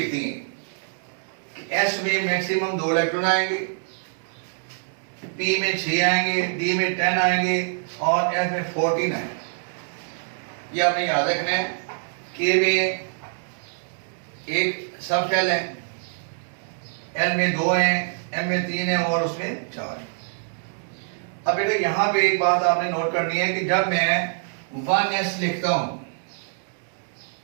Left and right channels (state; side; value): silent; left; 62 dB below the other